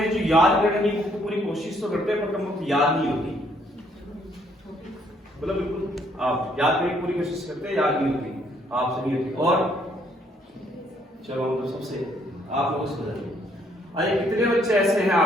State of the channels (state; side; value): normal; both; correlation 0.67